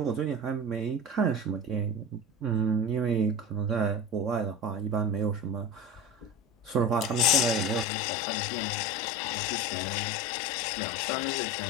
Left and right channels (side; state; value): right; drops out; at 7.9 s